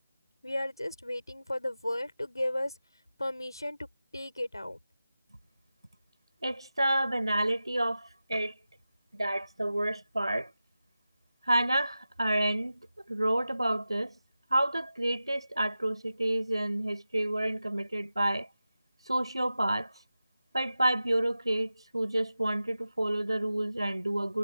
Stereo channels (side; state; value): both; inverted; correlation -0.94